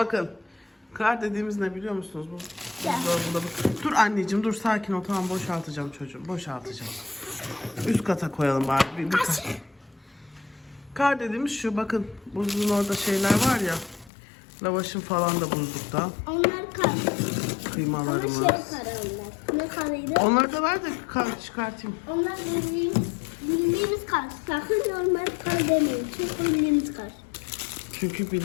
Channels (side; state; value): right; drops out; at 14.1 s